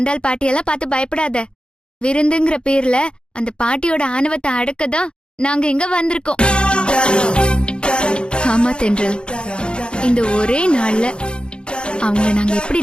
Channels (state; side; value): late; right; 0.053 ms